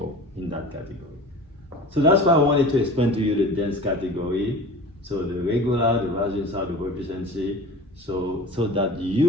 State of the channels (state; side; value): normal; both; correlation 0.38